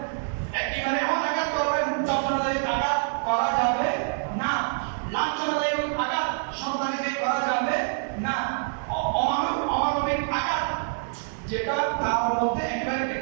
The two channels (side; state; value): left; silent; digital silence